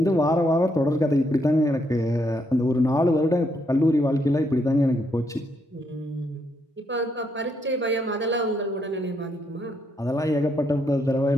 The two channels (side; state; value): both; normal; correlation 0.76